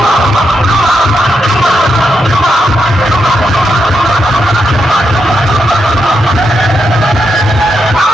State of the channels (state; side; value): normal; both; correlation 0.83